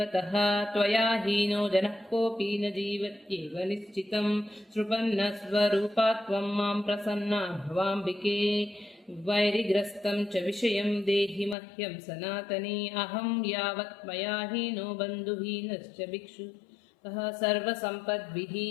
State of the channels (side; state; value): right; drops out; at 11.6 s